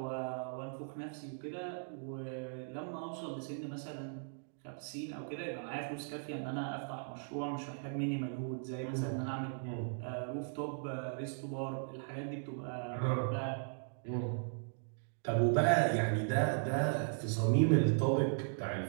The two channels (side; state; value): left; silent; digital silence